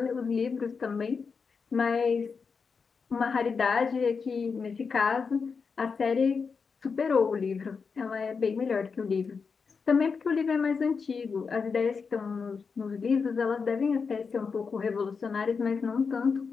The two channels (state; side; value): quieter; right; 5.3 dB